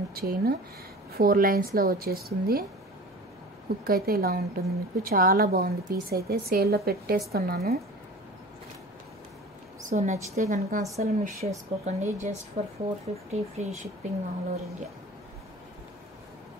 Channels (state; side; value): normal; both; correlation 0.39